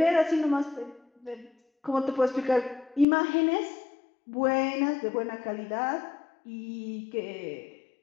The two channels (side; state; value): right; drops out; at 3.1 s